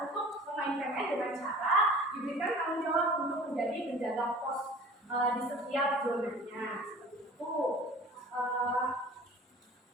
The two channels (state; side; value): normal; both; correlation 0.44